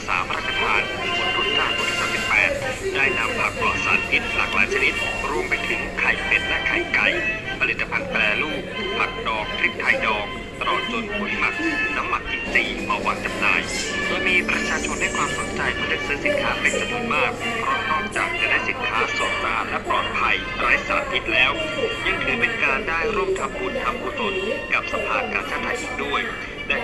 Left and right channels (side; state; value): both; identical; correlation 1.00